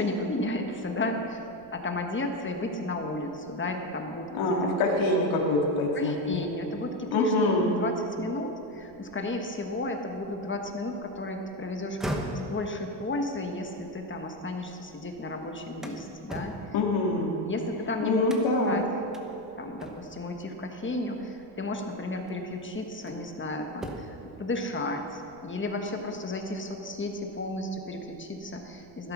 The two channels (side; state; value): right; noise; rumble, 26 dB below the sound